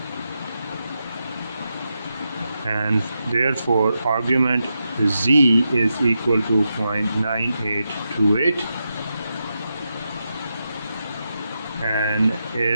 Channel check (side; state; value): both; inverted; correlation -0.87